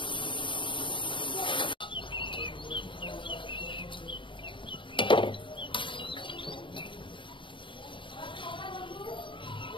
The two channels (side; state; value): right; late; 0.24 ms